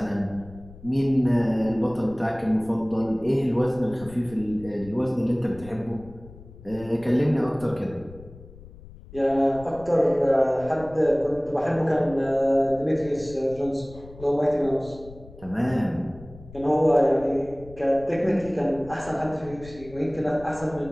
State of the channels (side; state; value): left; noise; rumble, 19 dB below the sound